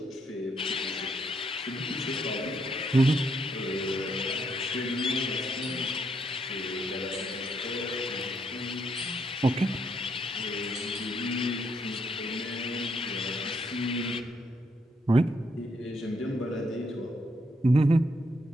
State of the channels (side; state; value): both; normal; correlation 0.75